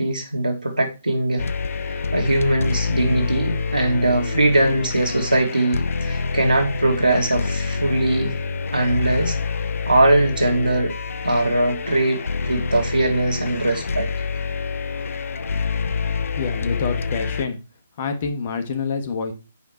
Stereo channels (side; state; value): both; inverted; correlation -0.83